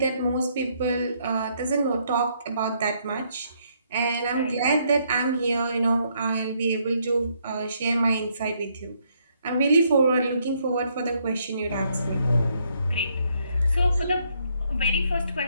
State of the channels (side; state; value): both; inverted; correlation -0.72